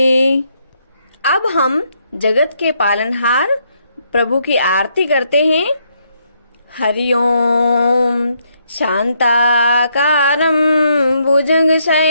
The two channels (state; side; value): inverted; both; correlation -0.74